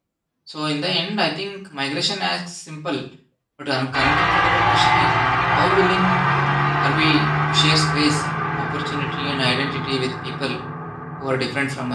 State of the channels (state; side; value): identical; both; correlation 1.00